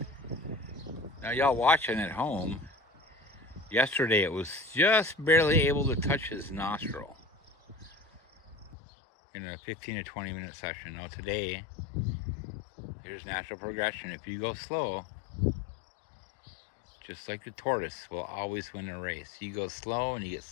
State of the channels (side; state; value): right; drops out; at 8.8 s